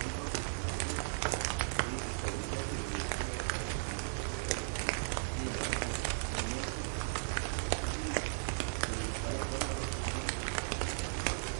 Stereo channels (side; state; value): left; silent; digital silence